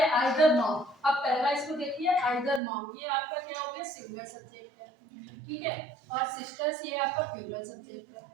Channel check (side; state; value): left; drops out; at 2.6 s